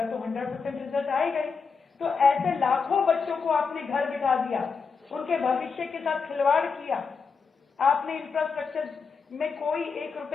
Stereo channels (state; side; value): quieter; right; 5.3 dB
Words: तो 100% रिजल्ट आएगा ही। तो ऐसे लाखों बच्चों को आपने घर बिठा दिया, उनके भविष्य के साथ खिलवाड़ किया। आपने इंफ्रास्ट्रक्चर में कोई 1